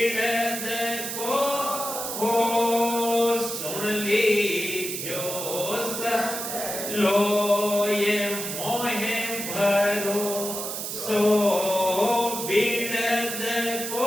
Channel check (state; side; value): noise; right; hiss, 5 dB below the sound